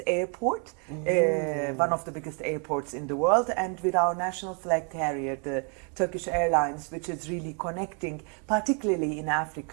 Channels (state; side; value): quieter; left; 38.6 dB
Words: airport, one of the biggest airports in the world, and with our national flag carrier, the Turkish Airlines, which is really connecting, particularly in